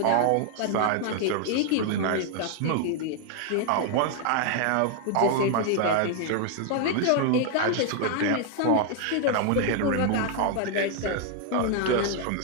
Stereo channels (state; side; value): different; both; correlation 0.00